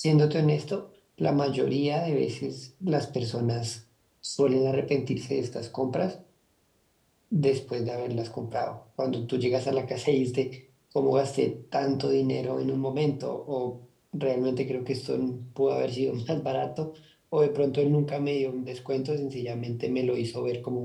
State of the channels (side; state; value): both; identical; correlation 1.00